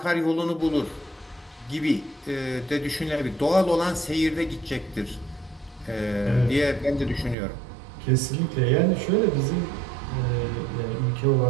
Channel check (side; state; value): left; drops out; at 7.4 s